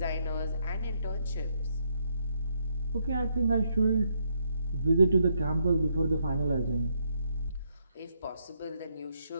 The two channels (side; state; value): both; inverted; correlation -0.75